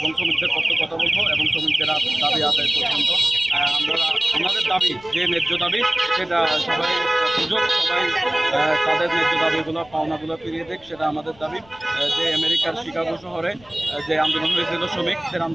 শ্রমিকদের পক্ষে কথা বলবো এবং শ্রমিকদের দাবি আদায় পর্যন্ত আমরা আমাদের দাবি যে ন্যায্য দাবি সেটা সবাই সুযোগ সবাই তাদের ন্যায্য দাবিগুলো পাওনাগুলো ফিরিয়ে দেখ, সেটা আমাদের দাবি। যে আমেরিকার শিকাগো শহরে যে আন্দোলন হয়েছিল শ্রমিকদের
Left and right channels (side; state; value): left; noise; rumble, 26 dB below the sound